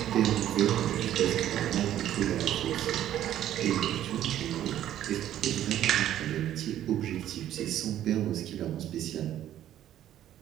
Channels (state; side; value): quieter; left; 11.9 dB